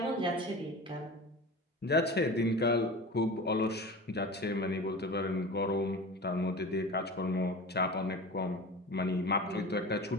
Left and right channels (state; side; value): normal; both; correlation 0.33